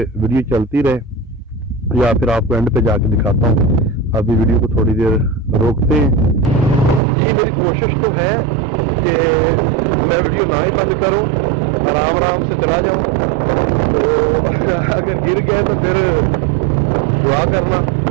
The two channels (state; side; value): drops out; left; at 7.0 s